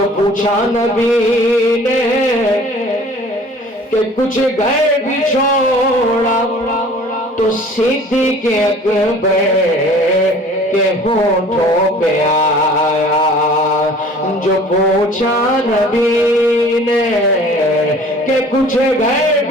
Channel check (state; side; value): normal; both; correlation 0.48